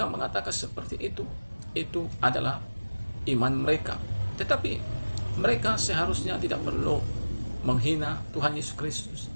mengatakan seperti itu adalah iman mereka. Tetapi mereka seharusnya tidak perlu menghina Tuhan Yesus Kristus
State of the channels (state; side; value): inverted; both; correlation -1.00